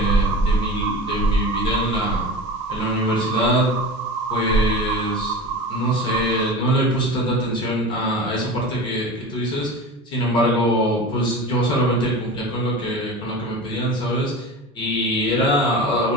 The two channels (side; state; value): both; normal; correlation 0.31